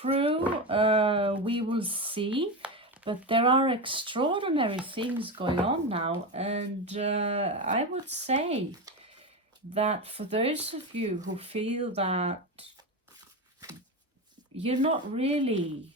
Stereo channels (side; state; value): both; normal; correlation 0.18